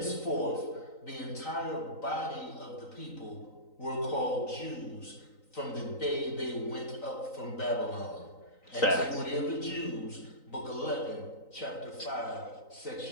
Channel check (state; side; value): late; right; 3.9 ms